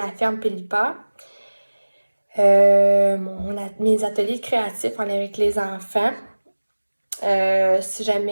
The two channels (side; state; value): both; inverted; correlation -1.00